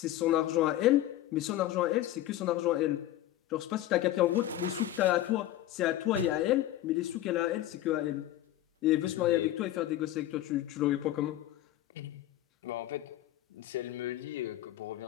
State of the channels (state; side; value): quieter; right; 14.0 dB